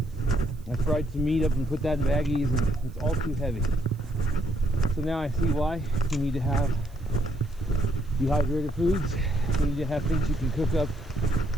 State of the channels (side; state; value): right; noise; hiss, 30 dB below the sound